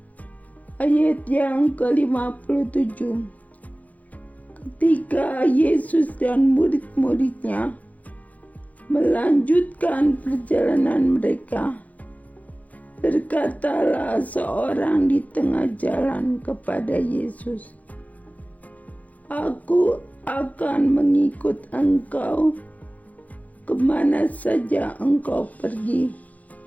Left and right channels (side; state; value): right; late; 0.075 ms